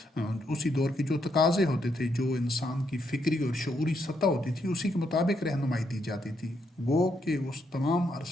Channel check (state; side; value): normal; both; correlation 0.77